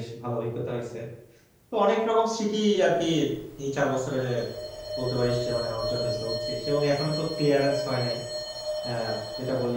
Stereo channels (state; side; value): identical; both; correlation 1.00